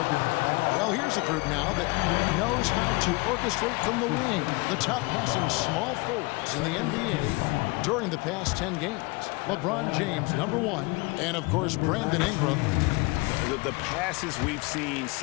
Well, here's a group now that knows how to orchestrate from the wing. The top passing small forwards in the NBA during the past 10 games. LeBron James, #1, and of course, Brandon Ingram. The passes we've seen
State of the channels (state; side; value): quieter; right; 26.0 dB